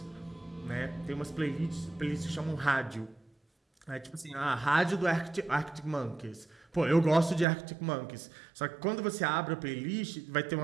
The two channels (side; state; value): left; drops out; at 7.5 s